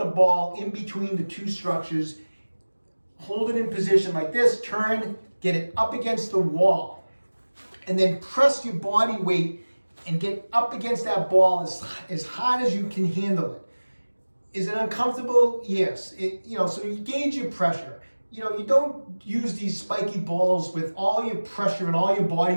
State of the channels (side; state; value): both; inverted; correlation -1.00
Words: ball in between the two structures. Hold it in position like this, turn, get it up against the wall, and then press your body weight and get up against that ball as hard as you can handle it. Is it uncomfortable? Yes. So you gauge your pressure. You don't use these spiky balls with all your pressure and all your body